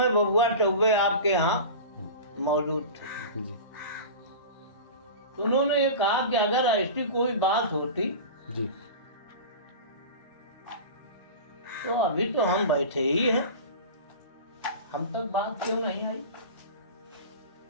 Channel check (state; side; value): inverted; both; correlation -0.32